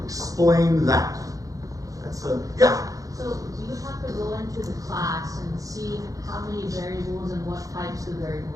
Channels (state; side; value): late; left; 0.17 ms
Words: explain that. That's a, yeah? So you would have to go into the class and see how many variables and what types of